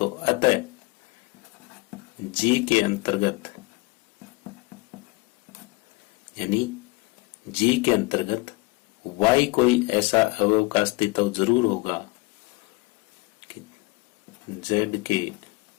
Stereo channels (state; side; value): quieter; right; 24.1 dB